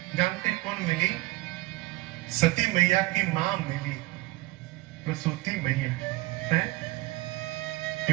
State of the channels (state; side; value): quieter; left; 20.0 dB